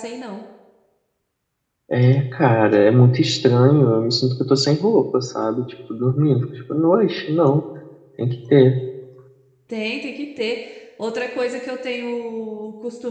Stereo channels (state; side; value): identical; both; correlation 1.00